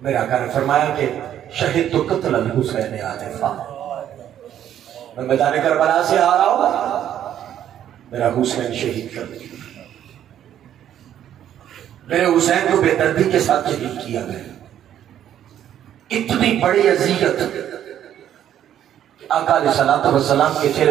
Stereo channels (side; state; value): left; quieter; 10.6 dB